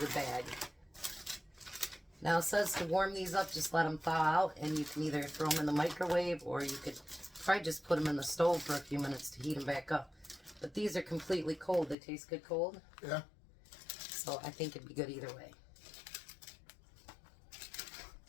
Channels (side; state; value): right; drops out; at 12.0 s